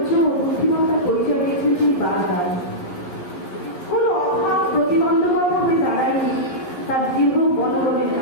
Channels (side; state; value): right; late; 11 ms